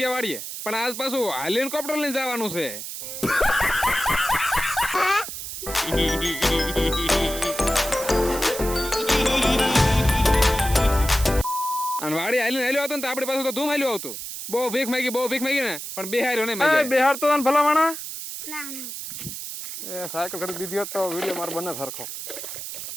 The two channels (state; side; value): noise; right; hiss, 8 dB below the sound